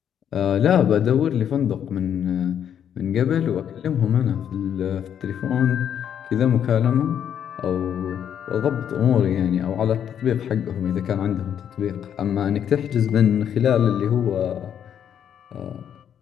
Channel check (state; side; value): quieter; right; 9.0 dB